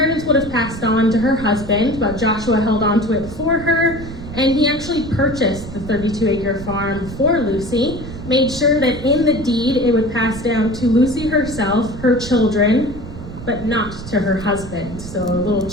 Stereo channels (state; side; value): noise; right; rumble, 11 dB below the sound